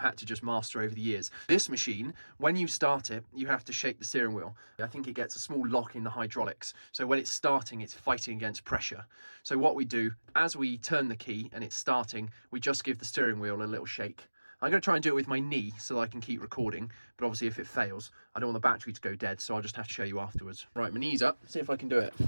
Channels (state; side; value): inverted; both; correlation -1.00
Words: to just master over the years. This machine, when you start it, you have to shake the steering wheel. I think it gets a small lock in the hydraulics, so when it's starting, it's fighting against pressure. So what we do, as we turn the key and it's starting, we just give the steering wheel a little shake. I'm going to try and do it with my knee so that I can keep recording, but obviously if it fails, I don't want the battery to go dead, so I'll just have to show you afterwards. Right, my knee's up, see if I can do it.